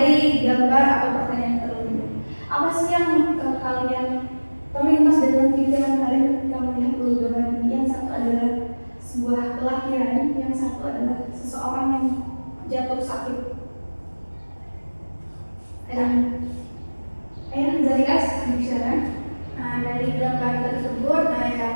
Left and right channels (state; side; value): inverted; both; correlation -1.00